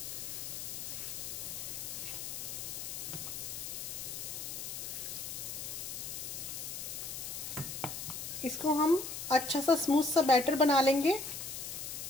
इसको हम अच्छा सा स्मूथ सा बैटर बना लेंगे।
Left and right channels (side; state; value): left; noise; hiss, 6 dB below the sound